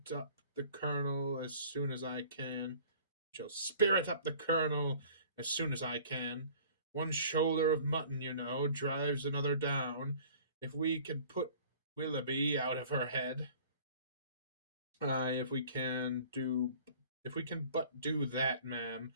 up the Colonel as soon as I can. Shall spirit up the Colonel as soon as I can. One shoulder of mutton, you know, drives another down. If we can put Willoughby out of her head, aye, if we can but do that, ma'am,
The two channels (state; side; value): inverted; both; correlation -0.49